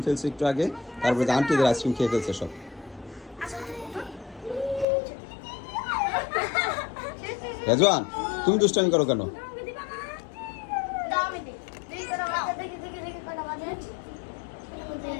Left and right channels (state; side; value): drops out; right; at 4.9 s